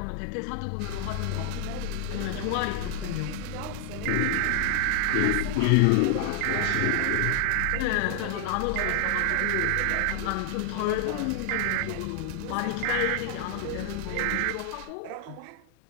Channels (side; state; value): both; different; correlation 0.00